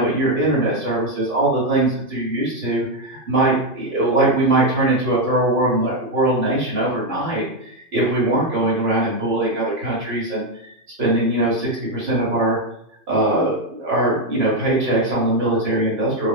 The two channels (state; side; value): late; left; 2.5 ms